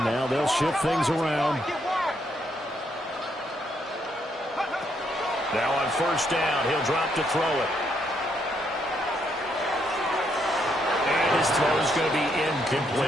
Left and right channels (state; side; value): normal; both; correlation 0.75